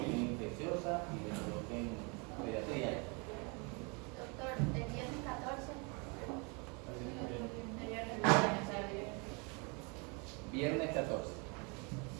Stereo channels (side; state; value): left; quieter; 31.9 dB